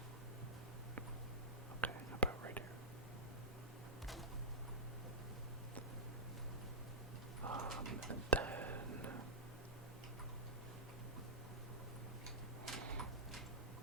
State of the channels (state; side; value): normal; both; correlation -0.13